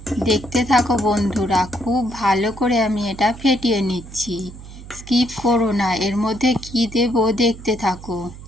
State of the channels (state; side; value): noise; right; hum, 15 dB below the sound